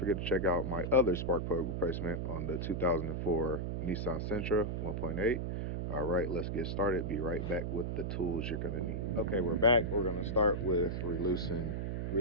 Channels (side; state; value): right; noise; hum, 2 dB below the sound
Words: to check out my other spark plug replacement on the 2004 Nissan Sentra 1.8. All right, let's get started. Be right back with the tools you're going to need. Okay, we're back. We're going to start with releasing